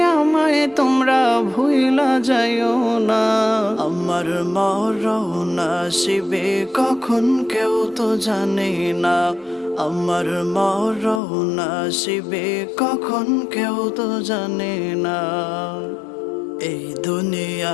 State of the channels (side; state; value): right; drops out; at 11.2 s